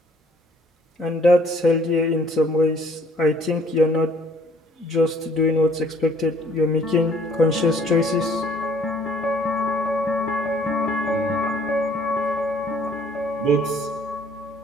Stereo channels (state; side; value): normal; both; correlation 0.59